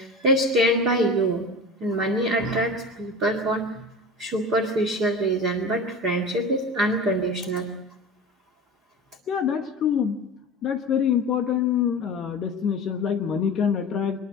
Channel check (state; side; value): normal; both; correlation 0.32